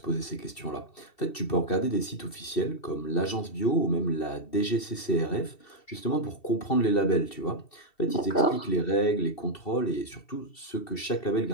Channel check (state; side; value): late; right; 2.7 ms